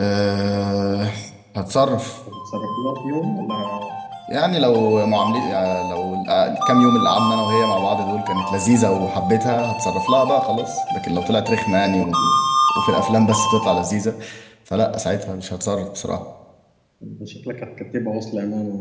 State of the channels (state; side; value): identical; both; correlation 1.00